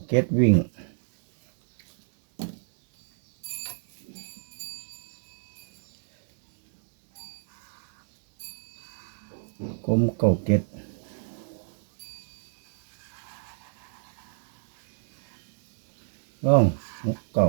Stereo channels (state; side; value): silent; left; digital silence